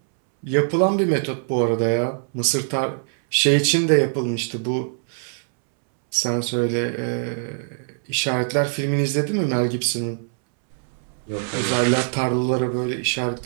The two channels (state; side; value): silent; left; 64 dB below the other